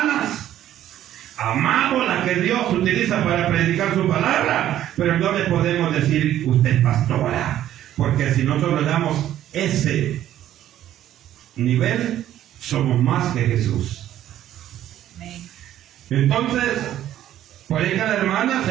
amamos las que Dios utiliza para predicar su palabra, pero no le podemos decir usted es pastora, porque si nosotros le damos ese nivel, somos más que Jesús. Amén. Entonces, por ahí cada hermana,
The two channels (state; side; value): quieter; left; 12.2 dB